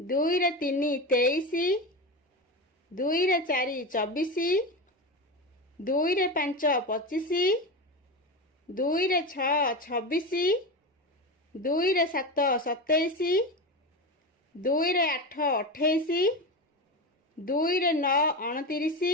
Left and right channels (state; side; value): normal; both; correlation 0.20